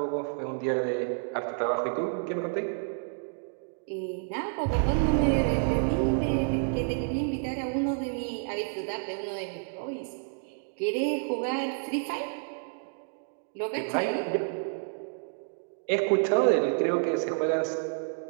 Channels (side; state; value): left; silent; digital silence